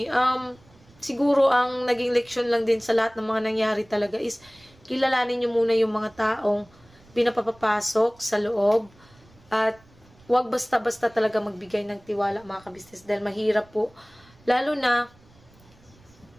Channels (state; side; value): noise; right; rumble, 28 dB below the sound